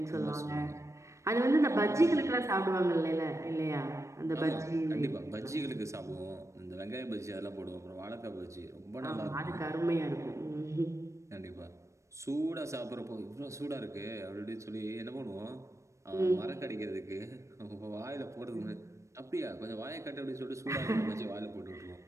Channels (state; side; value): late; left; 0.15 ms